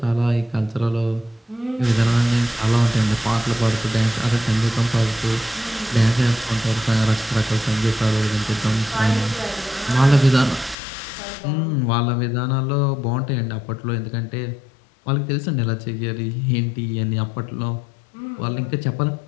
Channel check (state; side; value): drops out; right; at 10.8 s